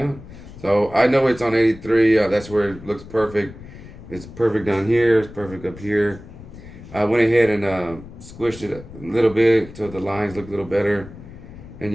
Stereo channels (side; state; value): left; noise; rumble, 16 dB below the sound